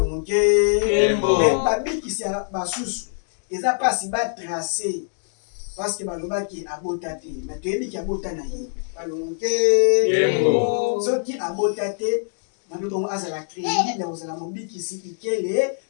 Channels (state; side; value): silent; right; digital silence